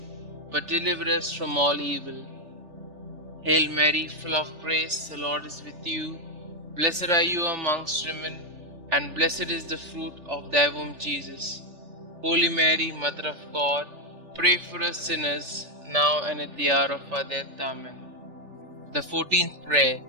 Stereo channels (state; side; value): late; left; 3.4 ms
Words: but deliver us from all evil. Hail Mary, full of grace, the Lord is with you. Blessed are you amongst women, and blessed is the fruit of thy womb, Jesus. Holy Mary, Mother of God, pray for us sinners, now and at the hour of our death. Amen. The 14th prayer.